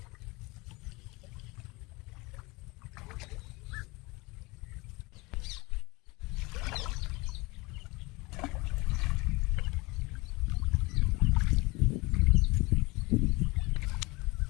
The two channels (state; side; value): quieter; right; 24.2 dB